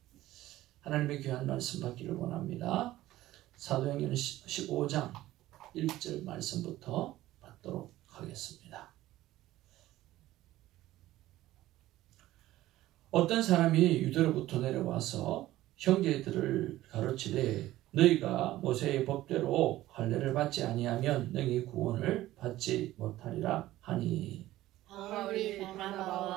하나님의 귀한 말씀 받기를 원합니다. 사도행전 15장 1절 말씀부터 받도록 하겠습니다. 어떤 사람이 유대로부터 내려와서 형제들을 가르치되 너희가 모세의 법대로 할례를 받지 아니하면 너희 구원을 받지 못하리라 하니, 바울이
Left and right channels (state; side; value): quieter; left; 15.6 dB